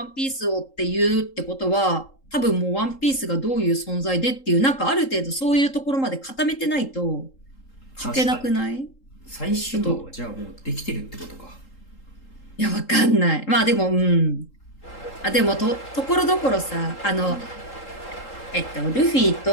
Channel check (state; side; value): late; right; 3.8 ms